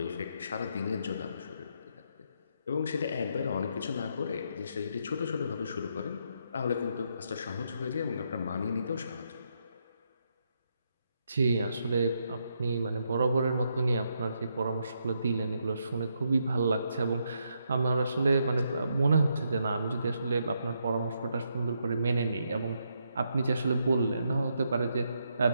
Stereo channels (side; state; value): both; inverted; correlation -0.78